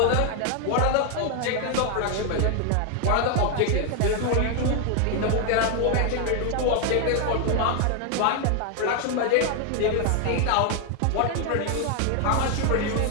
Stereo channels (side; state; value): both; different; correlation 0.01